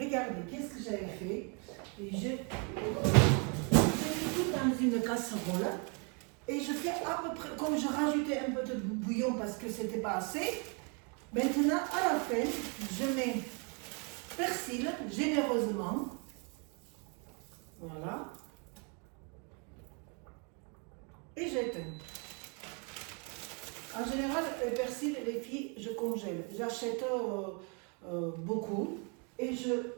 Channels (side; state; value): left; quieter; 35.6 dB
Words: qu'est-ce que j'avais fait. Et j'ai mis tout dans une casserole. Et je fais à peu près, comme je rajoutais un peu de bouillon parce que c'était pas assez. Maintenant, à la fin, je mets persil généreusement. Voilà. Et j'éteins. En général, le persil, les filles, je congèle. J'achète beaucoup et je